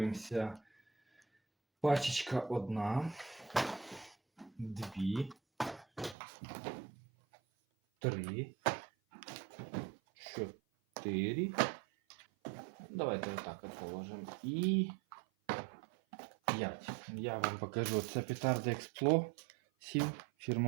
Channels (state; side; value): drops out; left; at 6.2 s